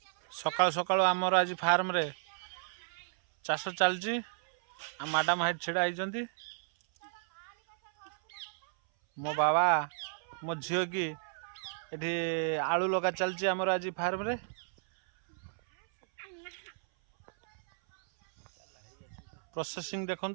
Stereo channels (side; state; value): left; silent; 56 dB below the other